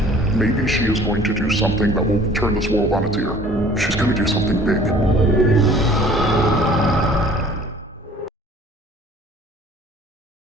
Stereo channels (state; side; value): normal; both; correlation 0.51